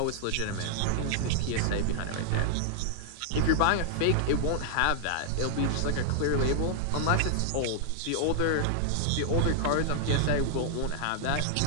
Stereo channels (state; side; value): different; both; correlation -0.01